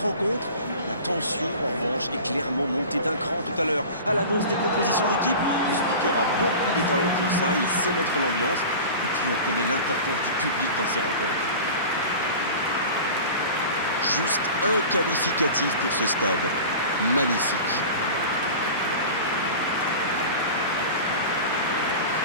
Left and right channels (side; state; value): both; inverted; correlation -0.36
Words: rencontre. La tension, en revanche, est clairement montée d'un cran tout à l'heure. À l'annonce des compositions d'équipe, le speaker a beaucoup de talent pour ça, il sait mettre l'ambiance. Et puis on connaît l'importance du public dans ces rencontres. Juste un qualificatif pour ce stade. Magnifique.